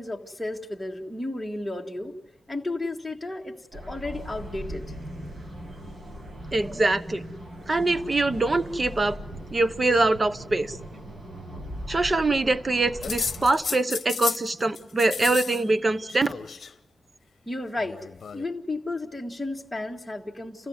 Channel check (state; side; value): normal; both; correlation 0.90